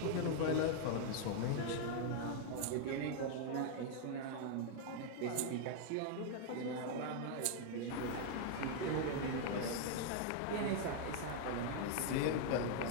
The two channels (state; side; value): different; both; correlation 0.00